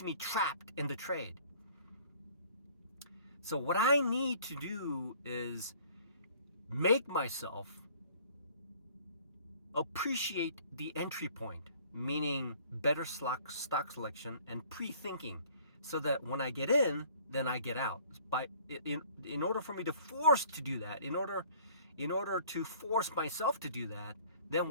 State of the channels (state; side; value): inverted; both; correlation -0.53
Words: me trapped in the trade. So what I need to do is make myself appreciate the entry point, meaning better stock selection and pre-thinking, so that when I get in, then I get out. In order for me to force to do that, in order to force myself to do that, then